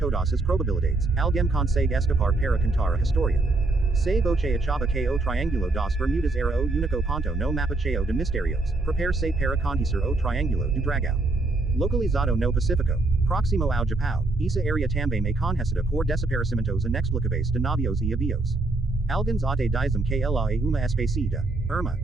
as probabilidades, alguém consegue escapar para contar a história. Se você achava que o Triângulo das Bermudas era o único ponto no mapa cheio de mistérios, prepare-se para conhecer o Triângulo do Dragão. Localizado no Pacífico, próximo ao Japão, essa área também é conhecida por desaparecimentos inexplicáveis de navios e aviões. Alguns até dizem que ela é uma espécie de irmã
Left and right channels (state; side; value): quieter; left; 3.2 dB